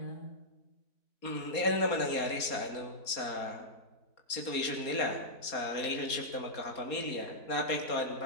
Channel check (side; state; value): right; late; 4.2 ms